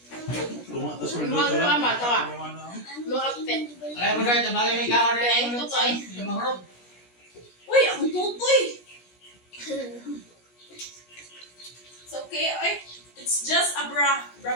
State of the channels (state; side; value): late; right; 17 ms